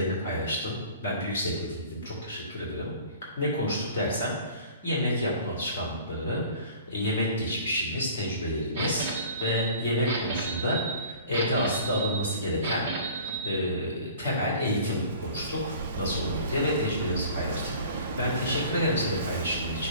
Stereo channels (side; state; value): both; inverted; correlation -0.46